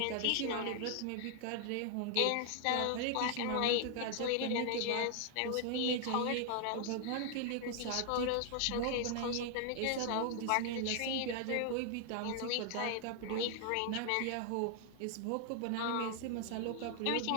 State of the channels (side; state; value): both; different; correlation 0.00